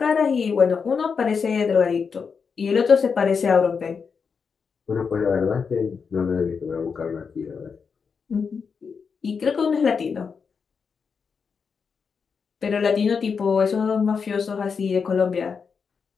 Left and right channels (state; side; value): quieter; right; 5.8 dB